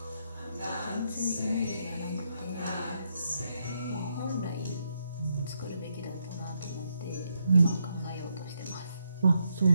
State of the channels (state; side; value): inverted; both; correlation -0.79